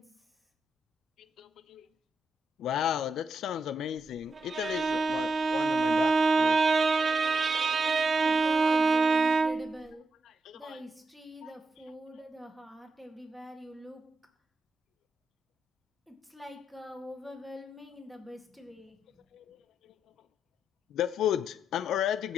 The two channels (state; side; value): normal; both; correlation 0.84